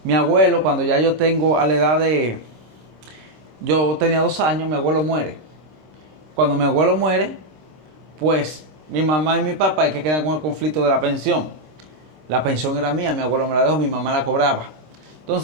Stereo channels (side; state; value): left; late; 26 ms